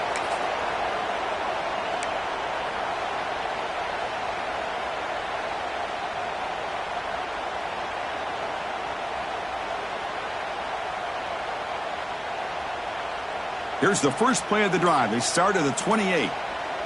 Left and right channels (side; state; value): both; identical; correlation 1.00